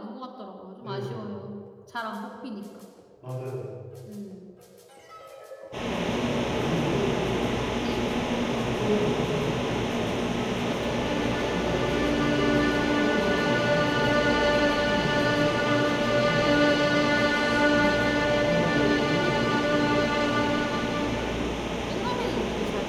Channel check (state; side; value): identical; both; correlation 1.00